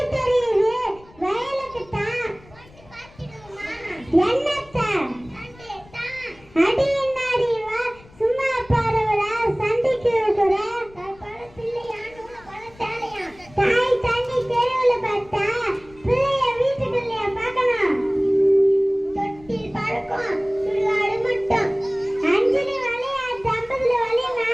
தெரியுது? வயலுக்கு தான். என்னத்த அடி என்னாடி வா சும்மா பாருவல சண்டைக்கு இருக்கிற தாய் தண்ணி தெருவுல பார்த்தா பிள்ளைய வீட்டுக்குள்ளே பார்க்கணும். தொட்டில் பறக்கும் சுடுகாடு மட்டும் அஞ்சலி வழியா தம்பதுல வழினா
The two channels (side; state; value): left; noise; rumble, 24 dB below the sound